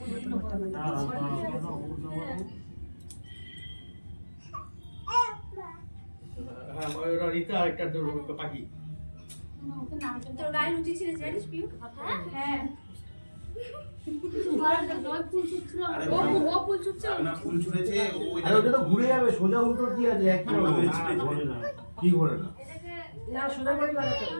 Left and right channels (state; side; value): inverted; both; correlation -1.00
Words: হ্যাঁ, ওরা রিতা একটা পাখি। তোর গায়ে লুচি ছিল জানিস পিউ? হ্যাঁ। ও ফুল ছুটছিল। না ফুল ছুঁড়েছে ওই আরে ওটা তো ঘুরে যাবে, সোজা উল্টো কি আছে? একই রকম। ঘোরে না। কি ঘোরে না? এটাকে না সোজা করে লাগাতে।